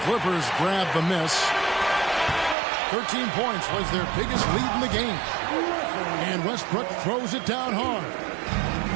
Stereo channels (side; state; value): left; drops out; at 2.6 s